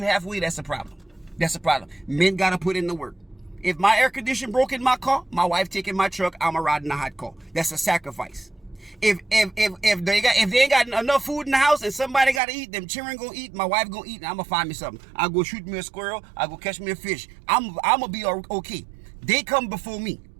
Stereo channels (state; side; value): drops out; left; at 12.4 s